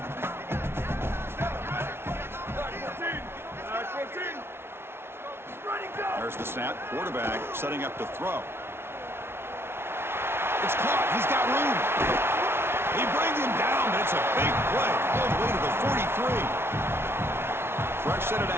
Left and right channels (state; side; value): late; left; 0.12 ms